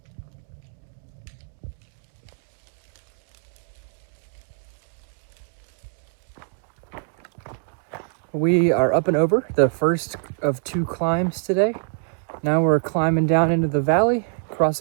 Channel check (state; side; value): silent; left; 59 dB below the other